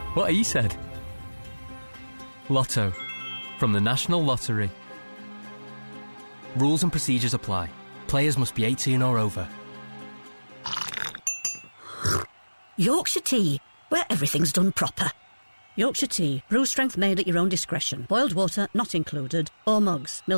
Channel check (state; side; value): inverted; both; correlation -1.00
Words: what he said. Lotto from the National Lottery. Rules and procedures apply. Players must be 18 or over. Yorkshire tea, where everything's done proper. Yorkshire tea, brew strength made at your own discretion. Boiled water not included. Or mugs,